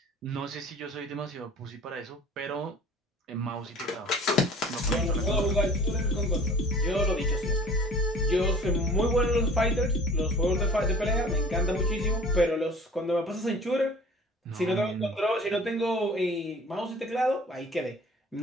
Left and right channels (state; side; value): normal; both; correlation 0.47